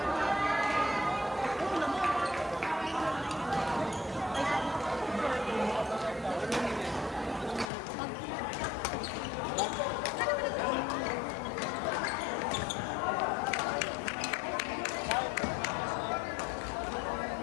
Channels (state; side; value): drops out; right; at 7.7 s